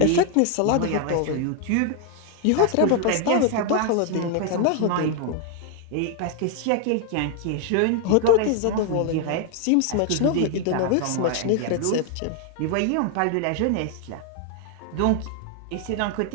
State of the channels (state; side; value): different; both; correlation 0.00